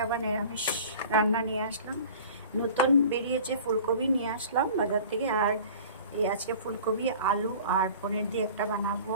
আবার নিরামিষ রান্না নিয়ে আসলাম। নতুন বেরিয়েছে ফুলকপি, নিয়ে আসলাম বাজার থেকে। আর এই আজকে ফুলকপি, আলু আর পনির দিয়ে একটা বানাবো।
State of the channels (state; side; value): inverted; both; correlation -0.43